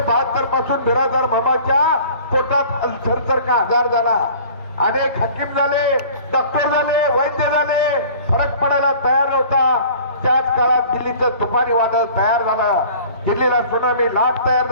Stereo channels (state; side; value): inverted; both; correlation -0.47